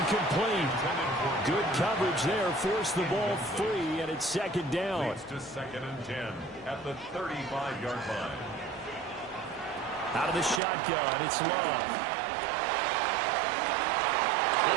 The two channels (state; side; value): drops out; left; at 10.6 s